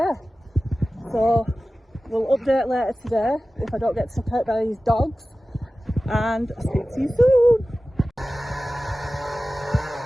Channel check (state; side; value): normal; both; correlation 0.96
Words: so we'll update later today if I don't get took out by these dogs, and I'll speak to you soon.